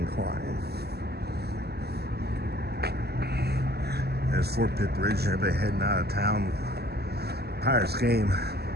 There's Fort Pitt Bridge, everybody heading out of town. Pirates game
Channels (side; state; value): left; late; 0.47 ms